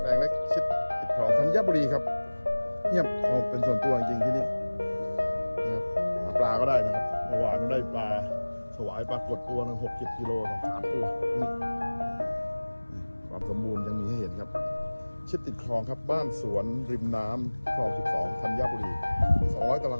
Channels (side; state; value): both; inverted; correlation -1.00